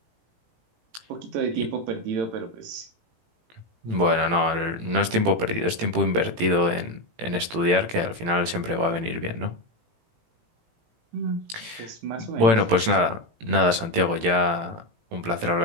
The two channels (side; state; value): left; late; 18 ms